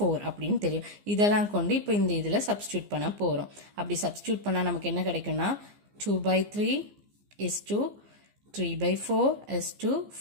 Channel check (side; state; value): left; late; 15 ms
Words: அப்படின்னு தெரியும். இதெல்லாம் கொண்டு இப்போ இந்த இதில் சப்ஸ்டியூட் பண்ண போகிறோம். அப்படி சப்ஸ்டியூட் பண்ணால் நமக்கு என்ன கிடைக்கும்னா 2/3 is to 3/4 is to